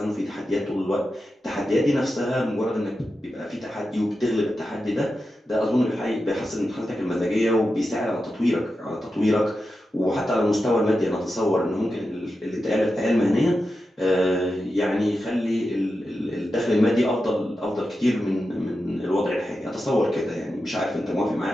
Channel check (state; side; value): normal; both; correlation 0.90